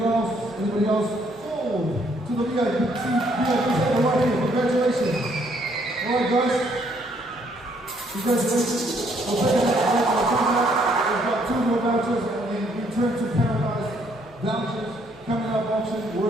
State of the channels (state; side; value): normal; both; correlation 0.68